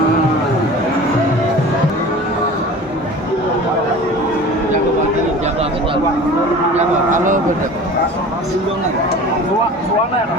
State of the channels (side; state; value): both; normal; correlation 0.39